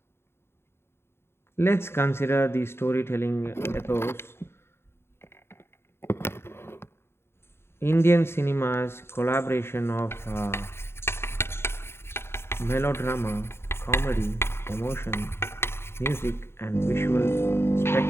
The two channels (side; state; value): right; late; 0.12 ms